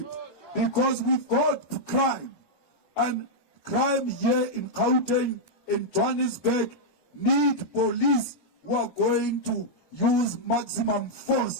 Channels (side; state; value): right; late; 1.2 ms